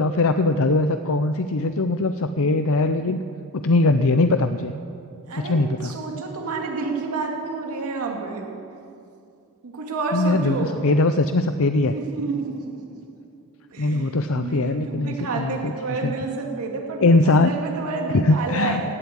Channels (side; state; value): both; normal; correlation 0.35